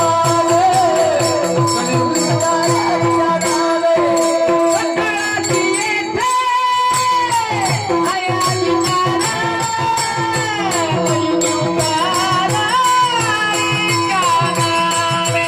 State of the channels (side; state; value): both; identical; correlation 1.00